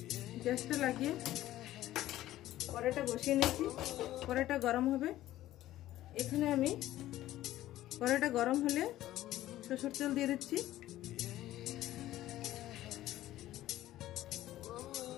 গ্যাসটা লাগিয়ে কড়াইটা বসিয়ে নিয়েছি। কড়াইটা গরম হবে। এখানে আমি কড়াইটা গরম হলে সরষের তেল দিয়ে দিচ্ছি।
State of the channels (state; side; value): quieter; right; 14.5 dB